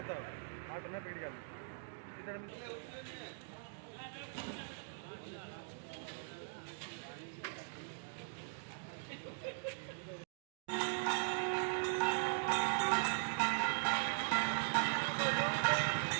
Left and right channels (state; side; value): silent; left; digital silence